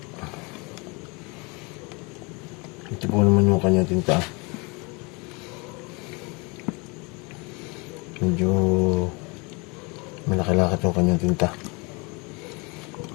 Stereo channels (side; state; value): right; quieter; 28.9 dB